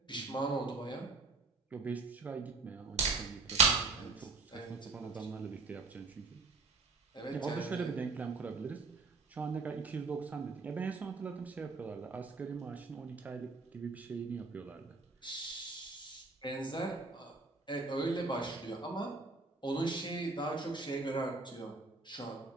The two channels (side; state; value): left; quieter; 3.9 dB